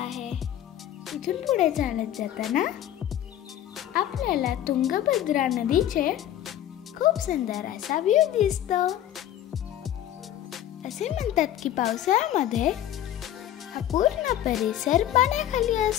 इथून पुढे चालत जाताना आपल्याला तुंगभद्रा नदीचे खूप सुंदर असा व्ह्यू दिसतो। असे म्हणतात की पावसाळ्यामध्ये हा पूर्ण परिसर पाण्याखाली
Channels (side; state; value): right; quieter; 11.8 dB